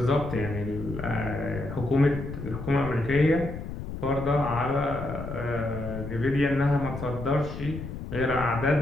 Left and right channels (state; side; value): noise; left; rumble, 8 dB below the sound